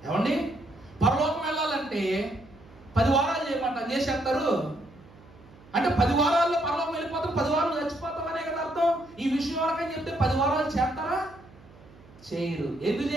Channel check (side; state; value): right; noise; hum, 24 dB below the sound